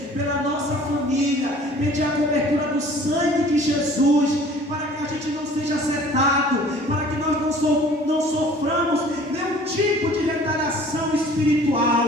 pela nossa família, pedir a cobertura do sangue de Jesus, para que a gente não seja afetado, para que nós não soframos nenhum tipo de retaliação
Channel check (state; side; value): normal; both; correlation 0.50